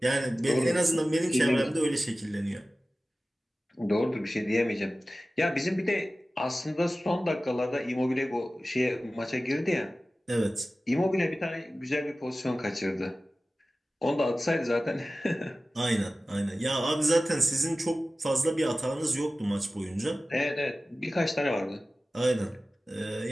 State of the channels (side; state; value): both; normal; correlation 0.96